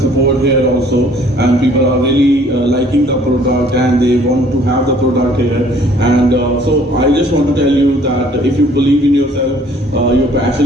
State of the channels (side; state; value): both; normal; correlation 0.57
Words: here also. And people are really liking the product, and they want to have the product here. And so I just want to tell you that if you believe in yourself, you're